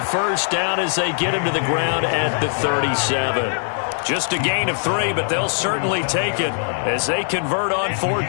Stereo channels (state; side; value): silent; right; 65 dB below the other